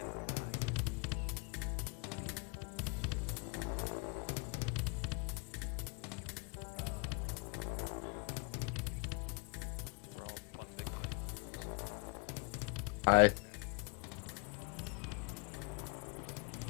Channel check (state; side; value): quieter; right; 34.4 dB